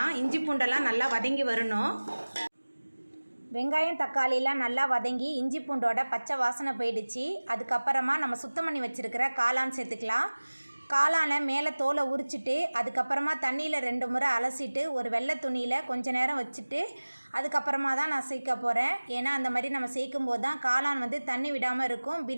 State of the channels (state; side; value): inverted; both; correlation -1.00